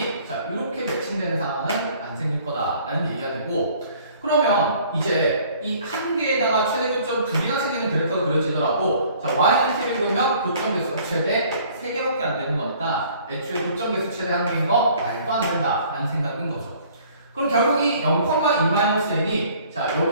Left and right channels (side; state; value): both; inverted; correlation -0.55